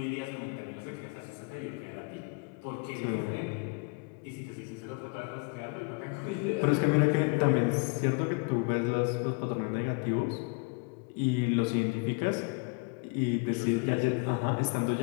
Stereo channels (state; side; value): quieter; right; 31.7 dB